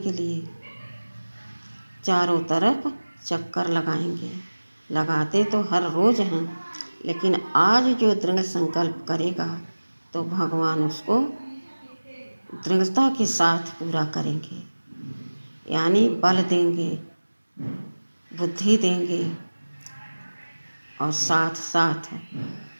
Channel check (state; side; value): inverted; both; correlation -1.00